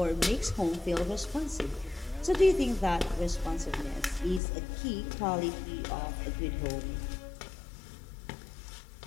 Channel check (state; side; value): drops out; right; at 4.4 s